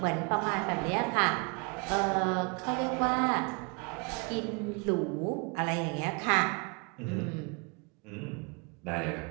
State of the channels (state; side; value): quieter; left; 32.4 dB